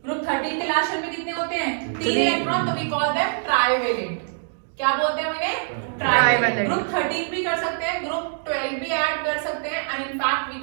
ग्रुप 13 के लास्ट शेल में कितने होते हैं? 3 इलेक्ट्रॉन, तो वी कॉल देम ट्राइवेलेंट। क्या बोलते हैं उन्हें? ट्राइवेलेंट। ग्रुप 13 भी कर सकते हैं, ग्रुप 12 भी ऐड कर सकते हैं and in fact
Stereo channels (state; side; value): silent; left; digital silence